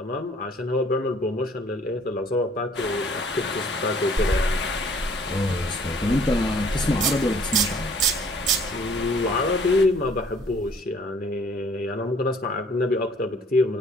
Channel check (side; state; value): both; normal; correlation 0.57